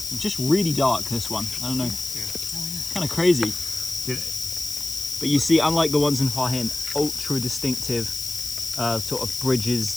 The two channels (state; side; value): noise; left; hiss, 6 dB below the sound